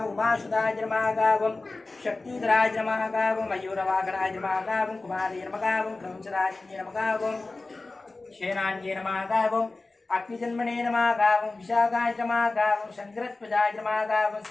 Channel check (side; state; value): right; quieter; 3.3 dB